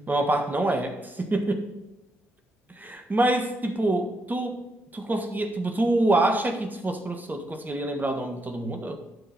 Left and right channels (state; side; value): normal; both; correlation 0.80